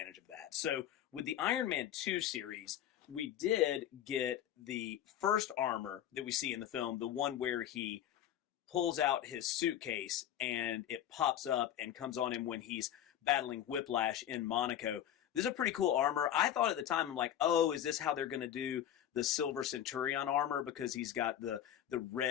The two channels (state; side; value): quieter; right; 10.9 dB